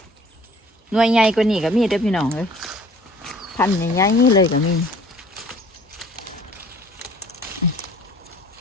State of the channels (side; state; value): both; normal; correlation 0.52